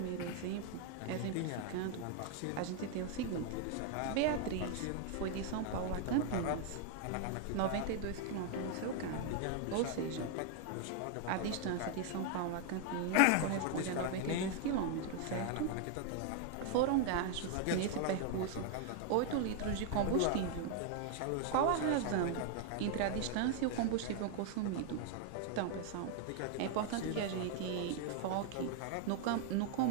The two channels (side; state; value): both; different; correlation 0.00